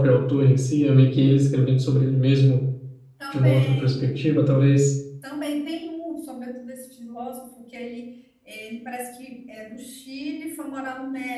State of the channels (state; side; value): identical; both; correlation 1.00